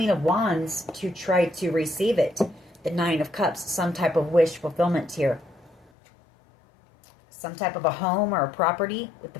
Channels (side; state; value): right; drops out; at 5.9 s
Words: of Wands to try to receive it. The Nine of Cups, some type of wish fulfillment here. Some type of a home or a property with the